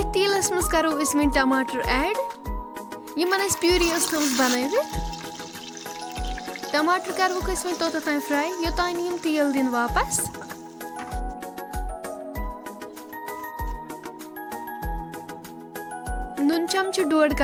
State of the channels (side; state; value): both; identical; correlation 1.00